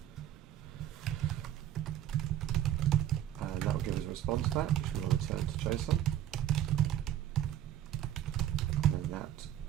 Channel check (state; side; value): quieter; left; 11.4 dB